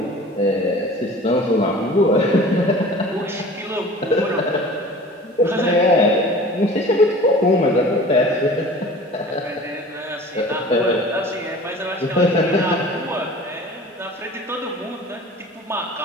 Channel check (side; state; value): both; normal; correlation 0.43